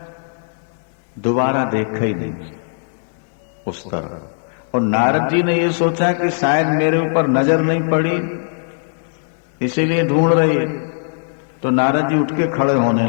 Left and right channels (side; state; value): right; silent; digital silence